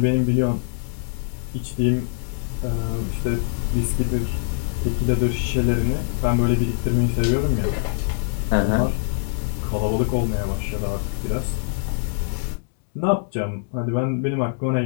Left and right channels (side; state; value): right; silent; digital silence